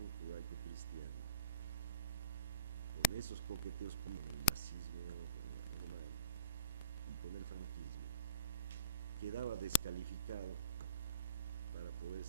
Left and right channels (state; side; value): inverted; both; correlation -0.39